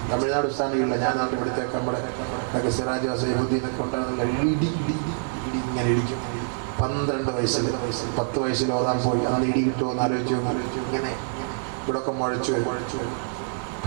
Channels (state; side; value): silent; left; 61 dB below the other